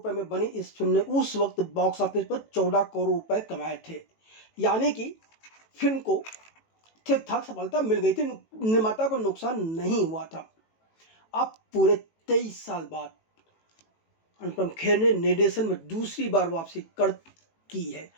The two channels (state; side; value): late; right; 18 ms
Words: में बनी इस फिल्म ने उस वक्त बॉक्स ऑफिस पर 14 करोड़ रुपए कमाए थे, यानी कि फिल्म को ठीक ठाक सफलता मिल गई थी, निर्माता को नुकसान नहीं हुआ था। अब पूरे 23 साल बाद अनुपम खेर ने निर्देशन में दूसरी बार वापसी की है